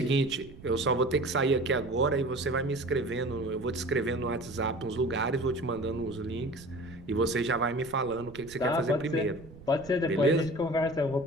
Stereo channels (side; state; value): right; noise; rumble, 19 dB below the sound